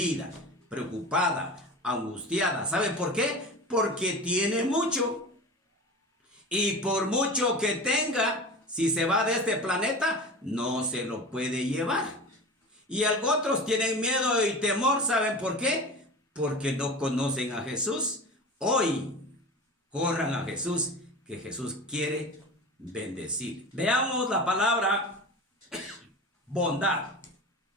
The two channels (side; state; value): both; normal; correlation 0.32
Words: preocupada, angustiada. ¿Sabe por qué? Porque tiene mucho. Y por mucho que tenga, si se va de este planeta, no se lo puede llevar. Y otros tienen miedo y temor. ¿Saben por qué? Porque no conocen a Jesús. Hoy corran a Jesús, que Jesús quiere bendecir. Veamos la palabra bondad.